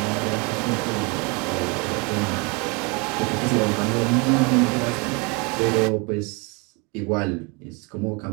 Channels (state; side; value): quieter; left; 30.4 dB